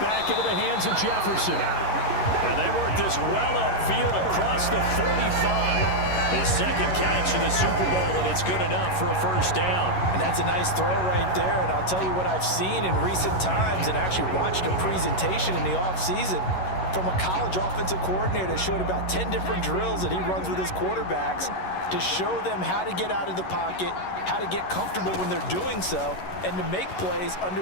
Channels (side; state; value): right; late; 11 ms